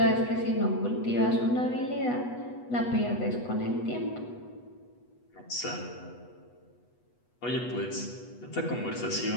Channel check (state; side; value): late; right; 8.2 ms